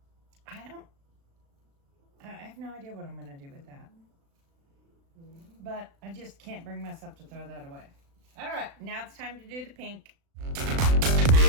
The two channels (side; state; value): left; late; 36 ms